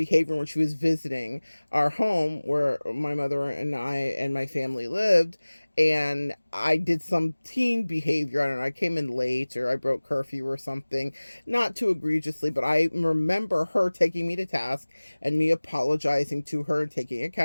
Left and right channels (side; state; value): both; inverted; correlation -1.00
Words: when she was visiting our home where my mother and I and my family lived. And I did some teen behavior. I don't know, I came in late, or I broke curfew or something. Not too egregiously, but I remember her taking me to task and me apologizing to her and taking